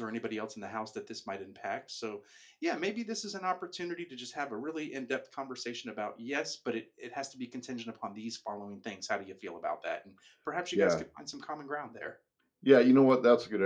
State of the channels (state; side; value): identical; both; correlation 1.00